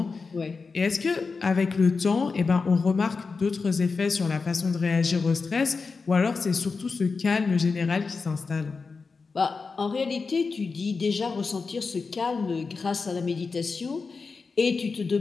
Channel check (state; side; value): quieter; right; 4.6 dB